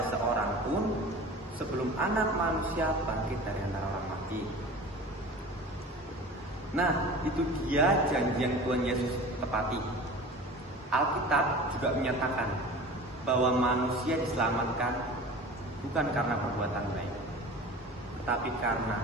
seorang pun sebelum Anak Manusia bangkit dari antara orang mati. Nah, itu dia janji yang Tuhan Yesus tepati. Alkitab juga menyatakan bahwa manusia diselamatkan bukan karena perbuatan baik, tetapi karena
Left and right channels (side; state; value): both; normal; correlation 0.38